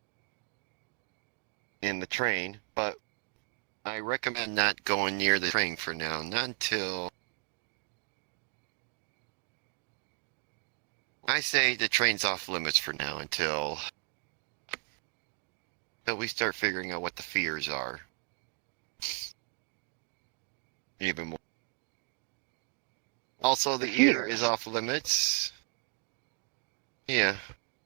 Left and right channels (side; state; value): left; quieter; 38.1 dB